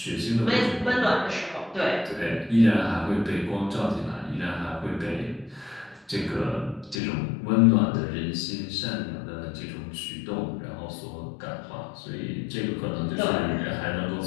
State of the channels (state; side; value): drops out; right; at 7.0 s